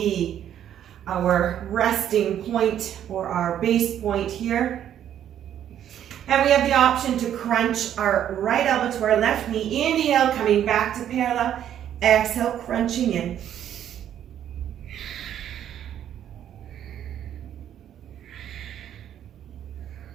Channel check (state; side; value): quieter; left; 10.3 dB